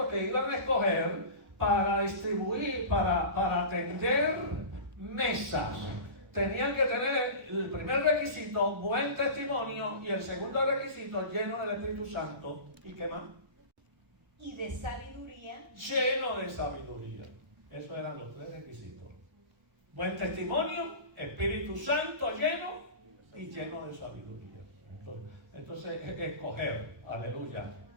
que iban a escoger para distribuir, para atender mesas, tenían que tener el primer requisito, buen testimonio, y el segundo requisito, lleno del Espíritu Santo. ¿Y qué más? Y de sabiduría. Lleno de sabiduría. Esos eran los 3 requisitos. Buen testimonio, Espíritu Santo lleno y lleno de sabiduría. Entonces escoger, aleluya,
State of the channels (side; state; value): left; late; 1.0 ms